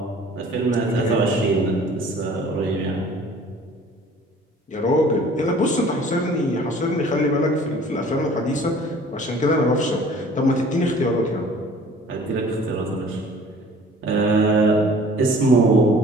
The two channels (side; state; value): both; normal; correlation 0.50